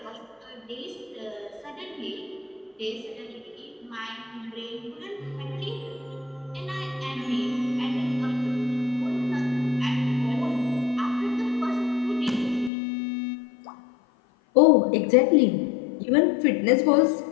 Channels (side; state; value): right; drops out; at 12.7 s